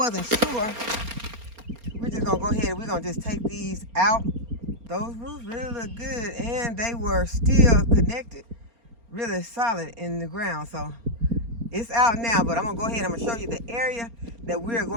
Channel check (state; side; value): late; left; 4.3 ms